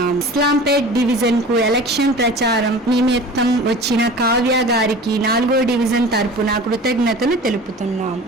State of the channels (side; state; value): both; normal; correlation 0.39